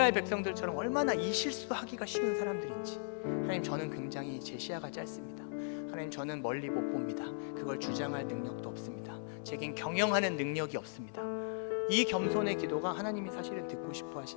백성들처럼 얼마나 이 실수하기가 쉬운 사람들인지. 하나님, 저는 굉장히 제 시야가 짧습니다. 하나님, 저는 멀리 못 봅니다. 그걸 주장할 능력도 없습니다. 제겐 경영하는 능력이 없습니다. 이 겸손의 기도가 하나님이 사실은 듣고 싶어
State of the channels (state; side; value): silent; right; digital silence